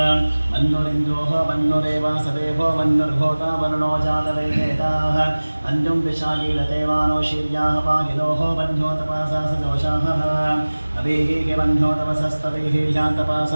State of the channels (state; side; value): inverted; both; correlation -1.00